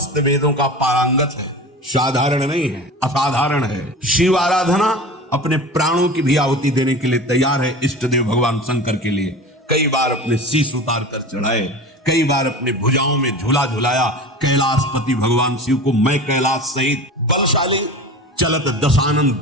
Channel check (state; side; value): normal; both; correlation 0.34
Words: वेदों का पारंगत है, साधारण नहीं है, असाधारण है। शिव आराधना अपने प्राणों की भी आहुति देने के लिए तैयार है। इष्ट देव भगवान शंकर के लिए कई बार अपने शीश उतार कर चढ़ाए, कई बार अपने भुजाओं में झूला झुलाया। कैलाशपति भगवान शिव को मैं कैलाश सहित बलशाली चलत दशानन